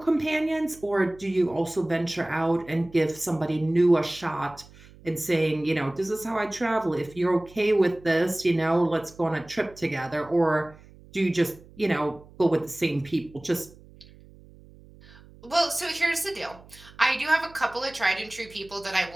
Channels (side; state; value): right; noise; hum, 23 dB below the sound